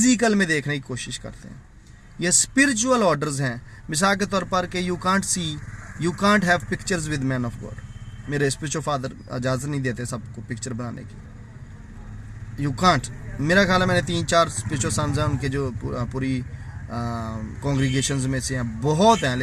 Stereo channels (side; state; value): both; identical; correlation 1.00